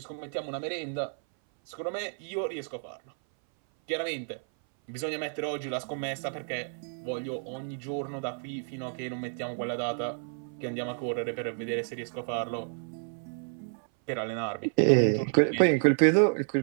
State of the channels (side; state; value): left; silent; 58 dB below the other